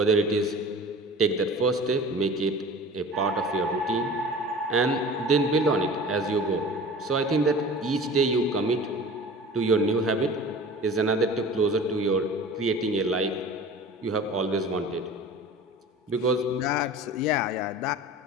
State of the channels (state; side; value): normal; both; correlation 0.40